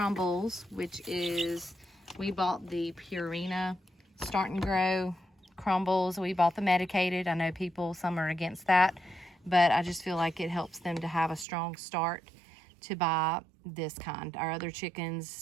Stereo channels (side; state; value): left; drops out; at 11.5 s